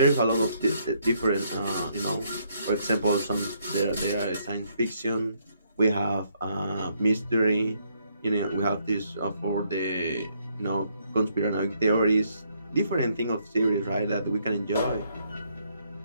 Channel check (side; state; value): both; inverted; correlation -0.72